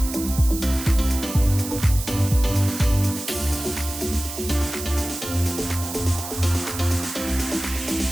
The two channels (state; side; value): noise; right; hiss, 9 dB below the sound